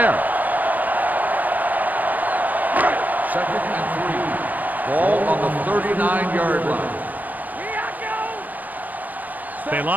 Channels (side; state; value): left; late; 0.081 ms